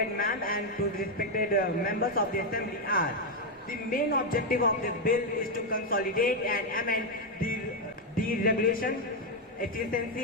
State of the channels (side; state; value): both; normal; correlation 0.03